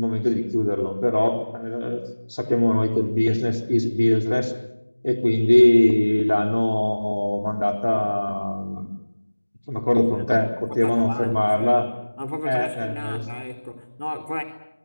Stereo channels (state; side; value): inverted; both; correlation -1.00